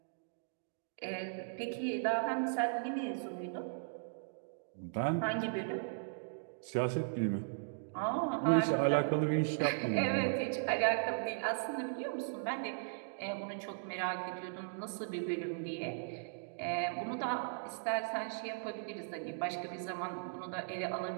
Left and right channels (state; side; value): silent; left; digital silence